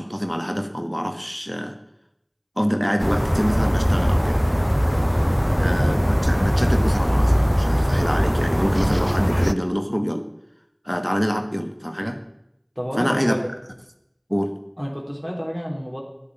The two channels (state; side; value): identical; both; correlation 1.00